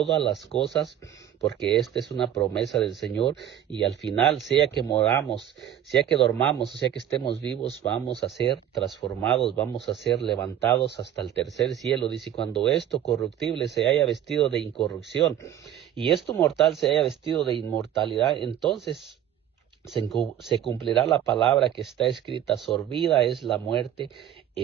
las cosas, porque esta es una promesa del Señor. Y al final, sea que moramos, sea que dormamos, sea que estemos vivos, vamos a ser transformados, vamos a ser levantados hasta el tercer cielo. Dice, cuando esto corruptible se haya vestido de incorrupción y esto mortal se haya vestido de inmortalidad, entonces se cumplirá la palabra que está escrita, sorbida es la muerte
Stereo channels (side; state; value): left; quieter; 10.7 dB